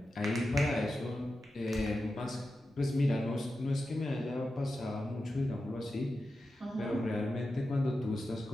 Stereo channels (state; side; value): normal; both; correlation 0.91